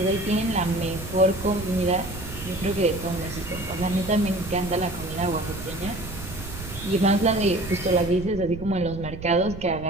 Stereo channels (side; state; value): right; noise; rumble, 11 dB below the sound